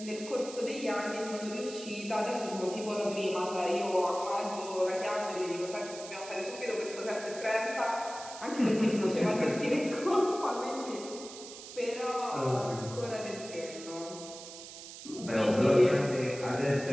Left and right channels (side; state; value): right; noise; hiss, 13 dB below the sound